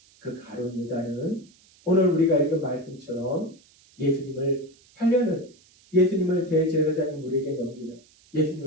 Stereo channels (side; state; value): right; noise; hiss, 29 dB below the sound